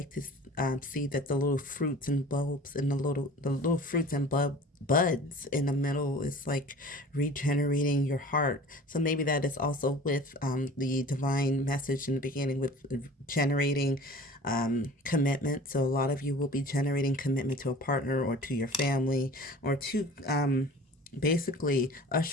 to see, that the little fruits and bulbs and the little fruits and buds in the middle is like regenerating your heart. So maybe that is also with the divine message in the beginning, with generating commitment. So a lot of you will be generating commitment to a partner or to your family, or to basically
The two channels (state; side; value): normal; both; correlation 0.43